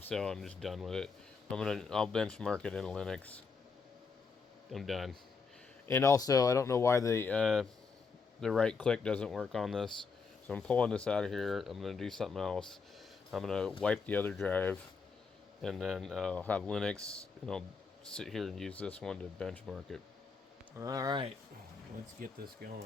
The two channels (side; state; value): right; quieter; 5.0 dB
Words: so I'm just done with it. I'll benchmark it in Linux. I'm done. And also, I don't know why the right click doesn't work on this. So I'm pulling this out of here. I'm going to do something else. I'm going to wipe the other drive, and then I'll have Linux, and I'll sit here and use this one to benchmark it. Alright, let's get this